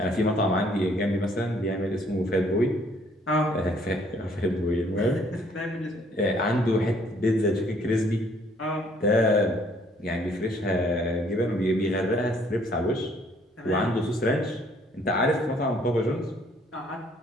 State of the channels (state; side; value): normal; both; correlation 0.63